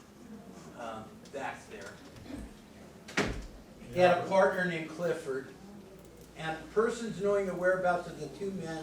back there. He had a partner named Clifford, and persons knowing the whereabouts of the two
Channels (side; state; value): both; identical; correlation 1.00